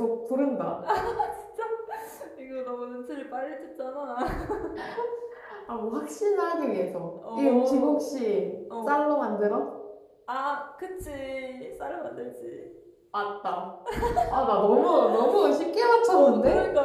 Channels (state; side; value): identical; both; correlation 1.00